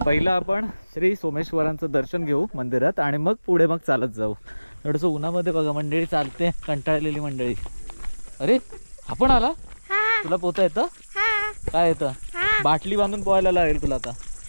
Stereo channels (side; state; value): both; inverted; correlation -0.99